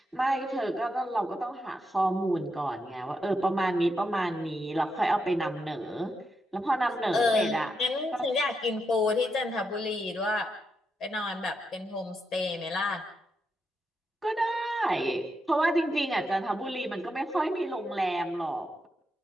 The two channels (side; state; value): both; normal; correlation 0.83